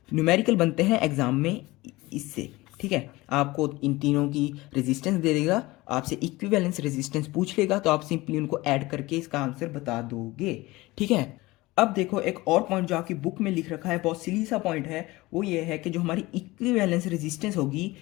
न्यूमेरिकल बनते हैं एग्जाम में इससे। ठीक है, आपको इन तीनों की रेजिस्टेंस दे देगा, आपसे इक्विवेलेंस रेजिस्टेंस पूछ लेगा, तो आप सिंपली उनको ऐड करके इसका आंसर बता दोगे। ठीक है, अब देखो एक और पॉइंट जो आपकी बुक में लिख रखा है, बहुत सिली सा पॉइंट है, वो ये है कि जो हमारी इक्विवेलेंस रेजिस्टेंस होगी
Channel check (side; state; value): right; quieter; 20.4 dB